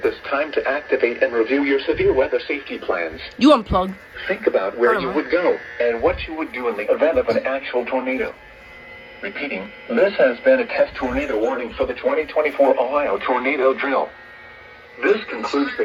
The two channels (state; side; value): identical; both; correlation 1.00